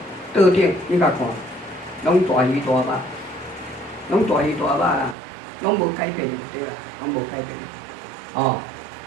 桌顶你甲看，拢大鱼大肉，拢大鱼大肉啦。拢无改变就对啦，拢无改变。哦，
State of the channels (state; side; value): drops out; left; at 5.2 s